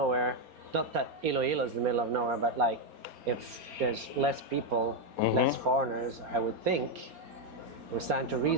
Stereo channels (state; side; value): late; left; 4.3 ms